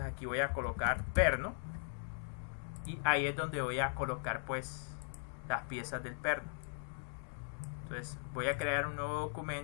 aquí voy a colocar perno y ahí es donde voy a colocar pues las piezas del perno. Entonces voy a crear un nuevo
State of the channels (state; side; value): silent; right; digital silence